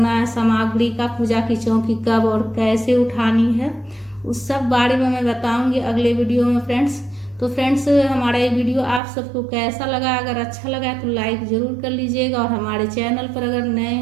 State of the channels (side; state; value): left; drops out; at 9.0 s